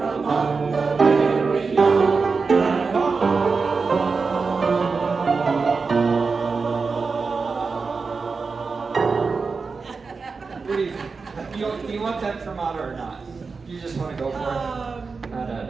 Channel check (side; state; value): left; quieter; 4.7 dB